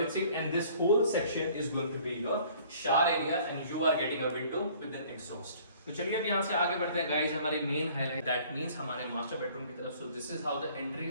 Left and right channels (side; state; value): both; inverted; correlation -0.54